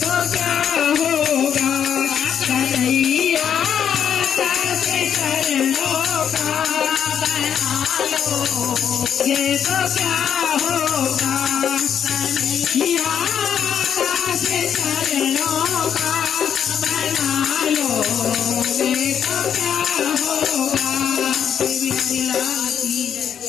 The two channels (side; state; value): right; quieter; 8.6 dB